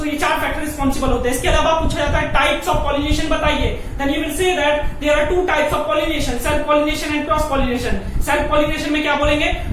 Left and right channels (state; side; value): identical; both; correlation 1.00